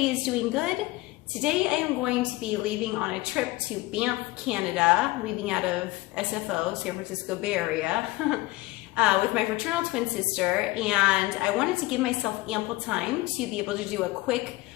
is doing good. Today I am going to be leaving on a trip to Banff, Canada, leaving out of SFO, San Francisco Bay Area, with my fraternal twin sister, and I wanted to give myself ample time to be able to do a quick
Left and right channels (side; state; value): right; quieter; 19.7 dB